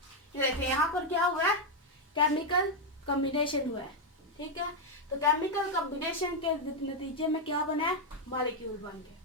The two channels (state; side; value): normal; both; correlation 0.02